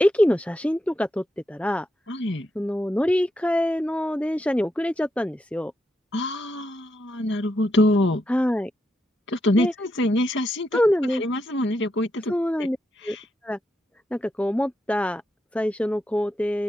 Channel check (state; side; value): normal; both; correlation 0.83